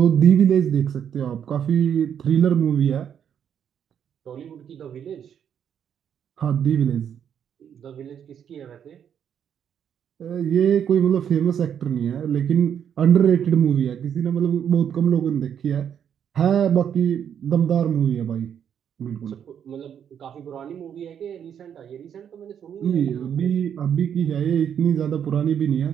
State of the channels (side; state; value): left; quieter; 8.6 dB